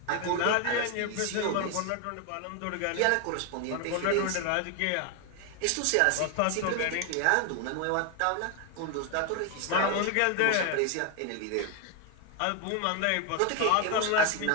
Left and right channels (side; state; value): both; different; correlation 0.01